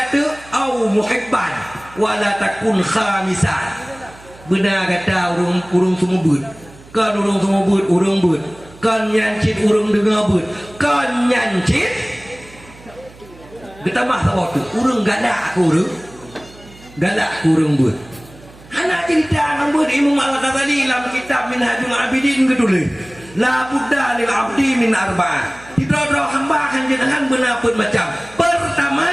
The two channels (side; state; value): right; noise; hum, 22 dB below the sound